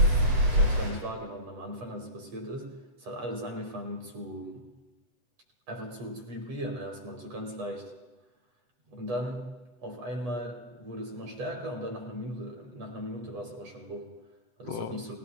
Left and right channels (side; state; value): left; late; 8.0 ms